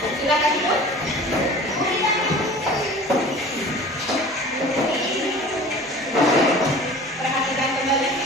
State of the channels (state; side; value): normal; both; correlation 0.42